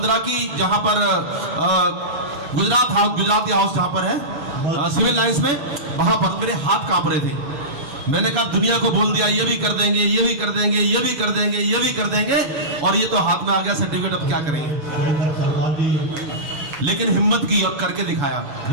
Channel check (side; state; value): left; late; 7.0 ms